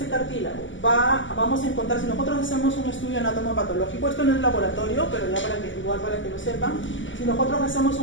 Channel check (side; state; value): right; late; 0.55 ms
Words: cartílago? Vamos a encontrar, si nosotros hacemos un estudio anatomopatológico, esto no es laboratorio, pero ya para que lo sepan, si nosotros hacemos